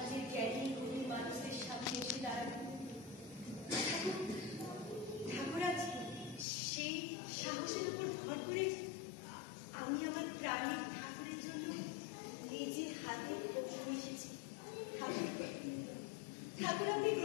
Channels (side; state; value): right; drops out; at 6.5 s